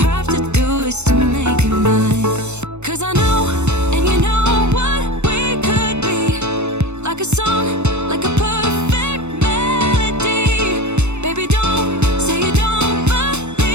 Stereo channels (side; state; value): left; late; 0.82 ms